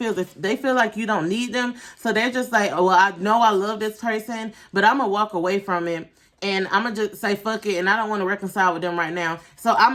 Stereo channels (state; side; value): identical; both; correlation 1.00